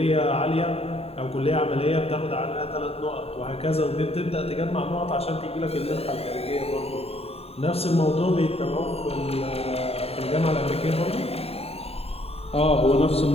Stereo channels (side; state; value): right; late; 0.29 ms